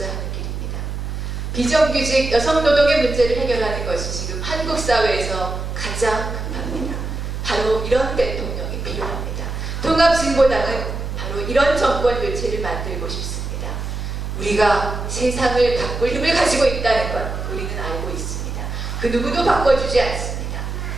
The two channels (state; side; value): noise; right; hum, 5 dB below the sound